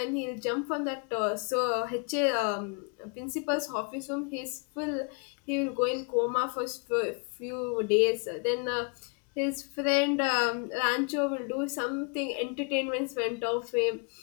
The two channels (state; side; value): quieter; right; 36.0 dB